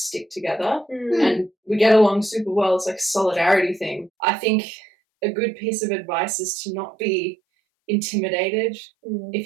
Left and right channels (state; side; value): drops out; left; at 4.1 s